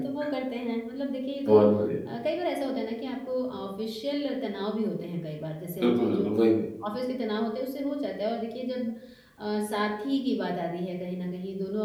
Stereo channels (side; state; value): both; identical; correlation 1.00